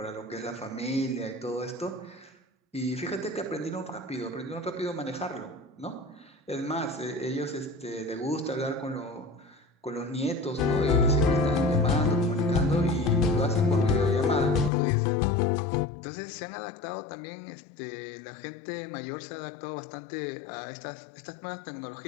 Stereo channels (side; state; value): right; drops out; at 14.7 s